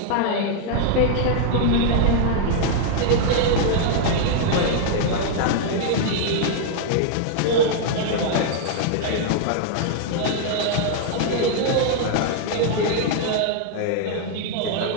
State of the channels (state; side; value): different; both; correlation -0.01